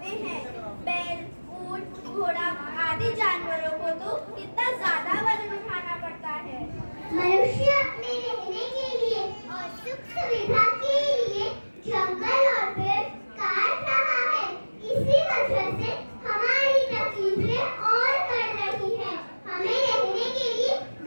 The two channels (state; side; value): inverted; both; correlation -1.00